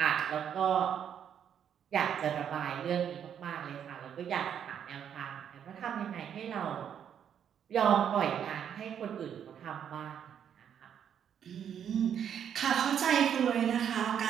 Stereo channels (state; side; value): quieter; left; 8.7 dB